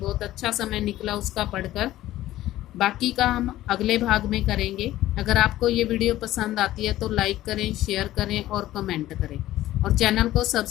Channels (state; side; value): quieter; right; 14.8 dB